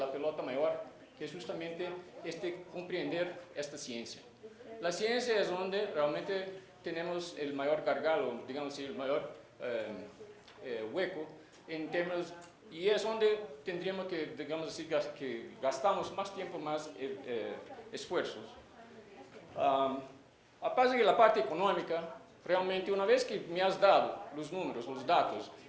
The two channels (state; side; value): identical; both; correlation 1.00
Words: pelota mayor, que es justamente comprender esta ciencia. La ciencia es donde realmente tenemos el mayor gargalo, digamos así, el mayor hueco en términos, y es donde tendríamos que, digamos así, que gastamos más tiempo, más esfuerzos. Aparte de la parte económica, realmente una vez que me has dado los números, los datos